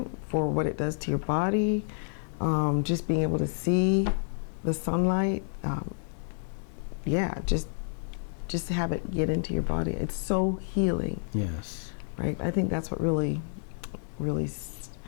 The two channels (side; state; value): right; silent; digital silence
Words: for what it does to your body, just being able to see the sunlight, yeah, just have it get into your body. It's so healing, Yes. right? I think that's what really